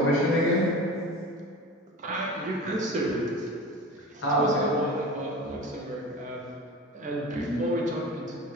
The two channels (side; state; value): both; normal; correlation 0.34